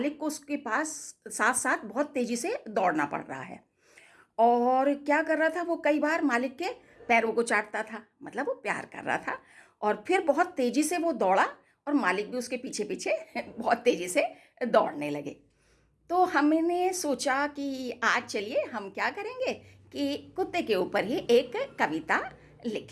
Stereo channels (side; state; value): both; identical; correlation 1.00